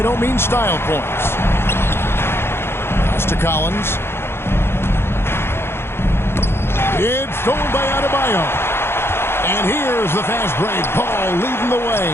don't mean style points. Pass to Collins. It's stolen by Adebayo. And here's the fast break. Ball leading the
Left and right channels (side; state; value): right; late; 0.11 ms